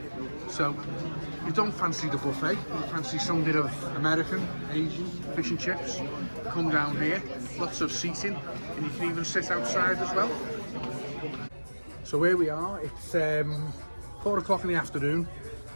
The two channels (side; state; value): both; inverted; correlation -1.00